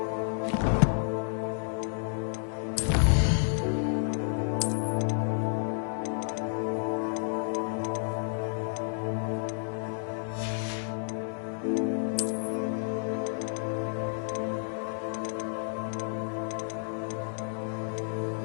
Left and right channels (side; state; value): right; silent; digital silence